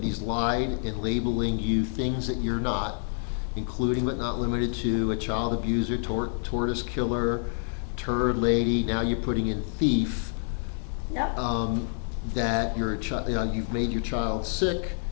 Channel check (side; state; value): right; silent; 60 dB below the other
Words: he's lied in labeling you things that you're not, including but not limited to a child abuser, tortoise killer, turd lady. Now you're putting in thief. Yep. That you've made your child sick,